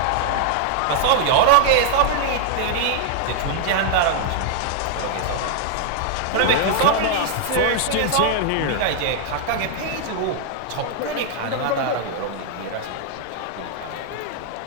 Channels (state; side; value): different; both; correlation 0.00